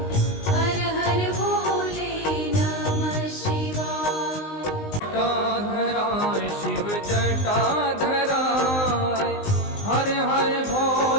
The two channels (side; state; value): right; late; 19 ms